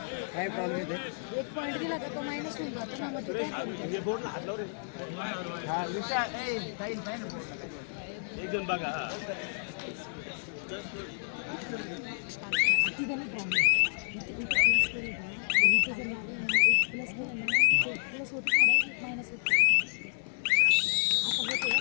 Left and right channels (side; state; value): right; silent; 57 dB below the other